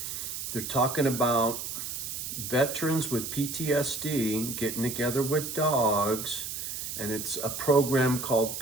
they're talking about veterans with PTSD getting together with dogs, and it's a program called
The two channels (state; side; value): noise; right; hiss, 6 dB below the sound